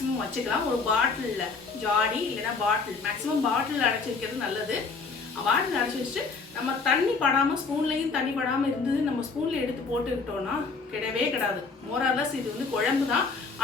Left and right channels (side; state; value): right; quieter; 4.5 dB